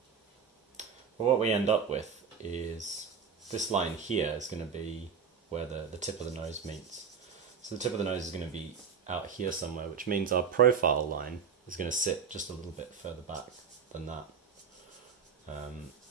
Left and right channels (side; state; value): left; quieter; 6.4 dB